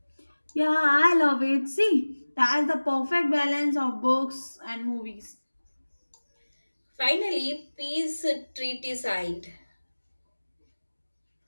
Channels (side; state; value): both; inverted; correlation -1.00